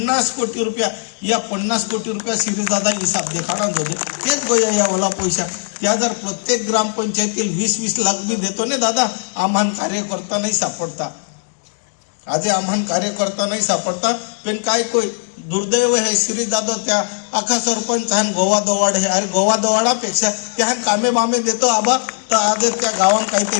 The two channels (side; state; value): right; silent; digital silence